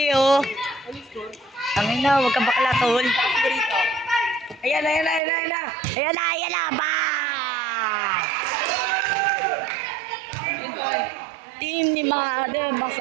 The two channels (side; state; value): left; drops out; at 5.2 s